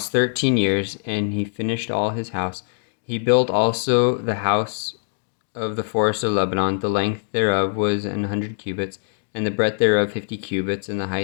13 years, and he finished all his house. He built also the house of the forest of Lebanon. The length thereof was 100 cubits, and the breadth thereof 50 cubits, and the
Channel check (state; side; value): silent; right; digital silence